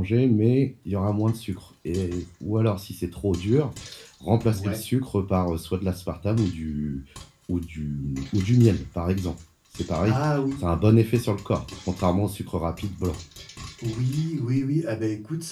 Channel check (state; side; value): identical; both; correlation 1.00